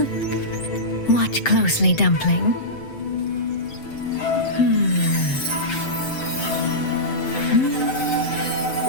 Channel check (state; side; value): late; right; 7.8 ms